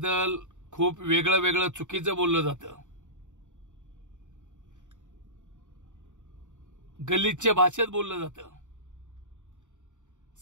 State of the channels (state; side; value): late; left; 0.85 ms